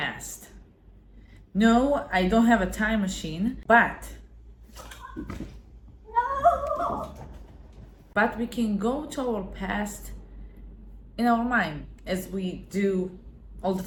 No, I don't have a time machine, but we can go to our past in our mind as we do all the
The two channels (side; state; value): both; identical; correlation 1.00